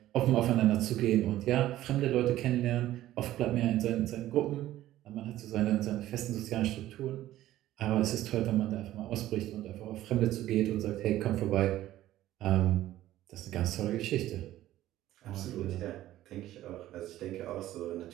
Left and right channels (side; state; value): left; quieter; 14.2 dB